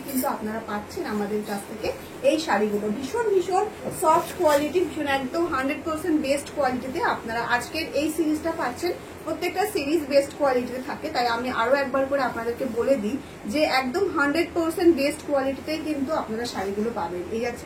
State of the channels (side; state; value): both; identical; correlation 1.00